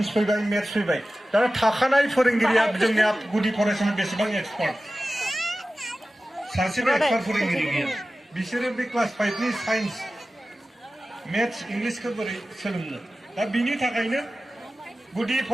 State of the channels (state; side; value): normal; both; correlation 0.95